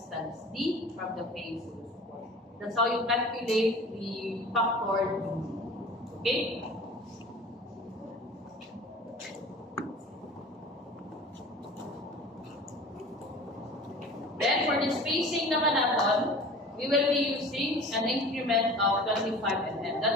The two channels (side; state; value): both; normal; correlation 0.41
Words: D from the base of the support. That's how you calculate the factor. Okay? Then for the spacing naman natin, we will be using an increment of 25 mm.